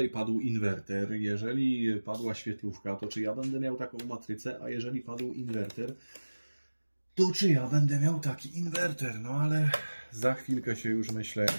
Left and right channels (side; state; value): both; inverted; correlation -1.00